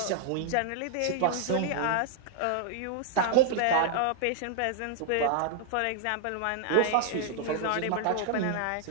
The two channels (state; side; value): different; both; correlation -0.01